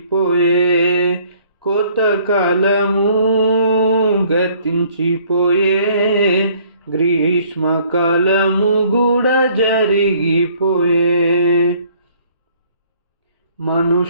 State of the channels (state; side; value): inverted; both; correlation -0.60